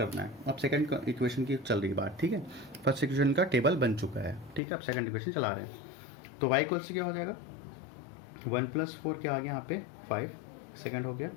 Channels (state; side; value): drops out; right; at 4.6 s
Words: है। अब सेकंड इक्वेशन की चल रही बात, ठीक है। फर्स्ट इक्वेशन का टेबल बन चुका है, ठीक है। अब सेकंड इक्वेशन चला रहे हैं, तो y इक्वल्स टू क्या हो जाएगा 1 प्लस 4 क्या आ गया यहाँ पे 5, सेकंड हो गया।